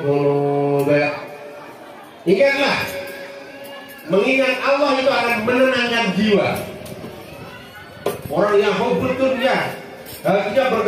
qulub. Ingatlah, mengingat Allah itu akan menenangkan jiwa. Orang yang hubbud dunya, hatinya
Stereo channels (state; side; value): identical; both; correlation 1.00